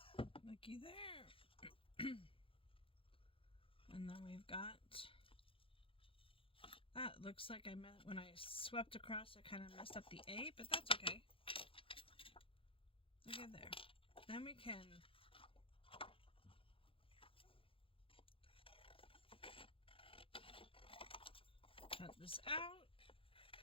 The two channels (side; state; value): right; late; 0.26 ms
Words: Looky there. And then we've got that. Looks like when I swept across, I kind of messed up the A, but that's okay. Look at there. Then we can cut this out.